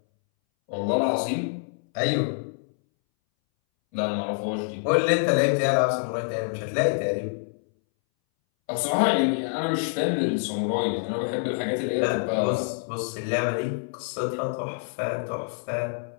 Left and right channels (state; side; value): silent; right; 61 dB below the other